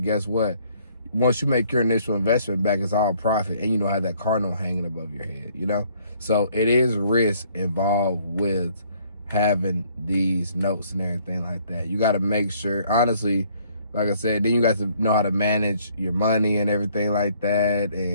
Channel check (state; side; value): inverted; both; correlation -0.63